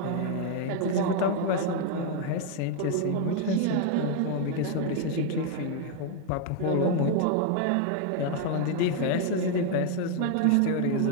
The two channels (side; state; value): both; different; correlation 0.00